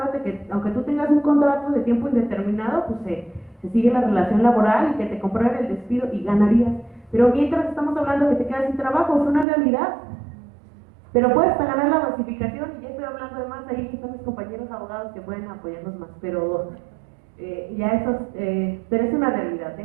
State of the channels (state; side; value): drops out; left; at 9.5 s